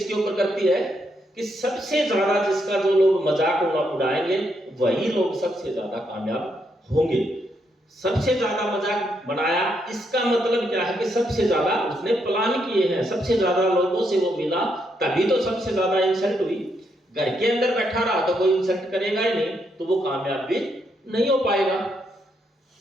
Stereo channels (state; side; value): normal; both; correlation 0.78